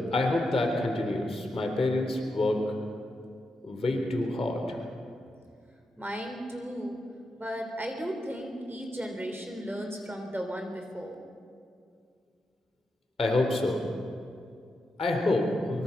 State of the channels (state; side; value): normal; both; correlation 0.86